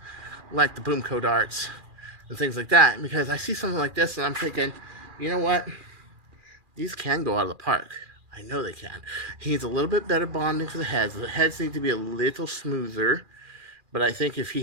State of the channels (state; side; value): late; left; 2.4 ms